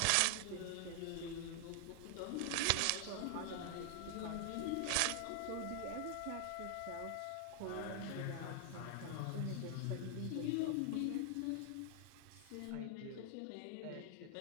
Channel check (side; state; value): both; different; correlation 0.00